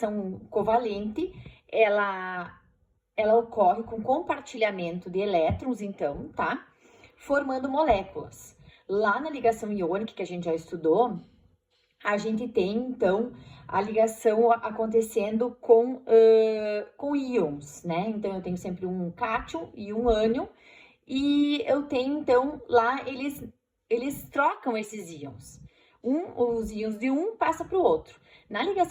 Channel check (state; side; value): identical; both; correlation 1.00